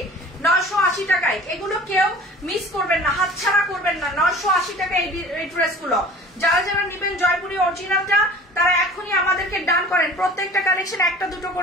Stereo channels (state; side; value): normal; both; correlation 0.44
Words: 980 টাকায়। এগুলো কেউ মিস করবেন না, হাতছাড়া করবেন না। 980 টাকায় এই ড্রেসগুলো যারা যারা নেবেন জয়পুরি অরিজিনালটা তারা এখনই আমাদেরকে ডান করেন। প্রত্যেকটা কালেকশন একটা দুটো